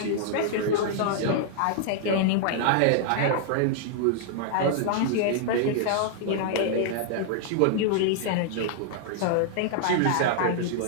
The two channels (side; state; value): both; different; correlation -0.01